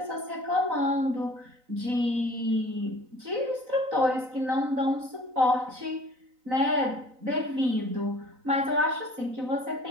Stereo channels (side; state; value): left; late; 3.9 ms